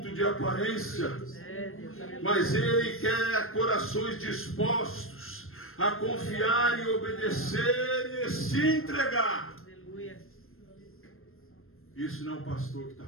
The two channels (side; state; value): right; late; 0.61 ms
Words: de aparência. Mas Ele quer corações dispostos a confiar e obedecer e se entregar. Isso não é o pastor que está